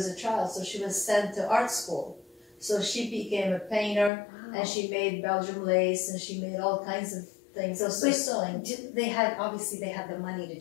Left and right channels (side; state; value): right; drops out; at 4.1 s